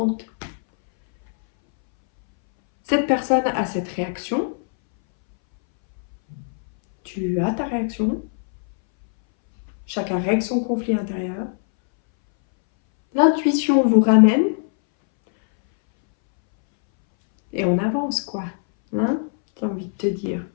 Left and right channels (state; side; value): silent; right; 62 dB below the other